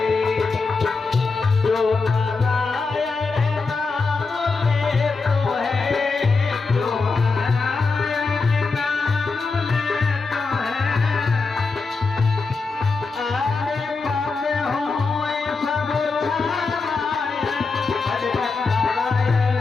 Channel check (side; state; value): right; quieter; 4.3 dB